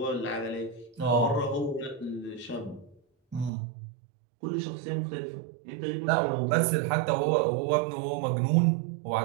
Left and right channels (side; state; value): left; drops out; at 3.5 s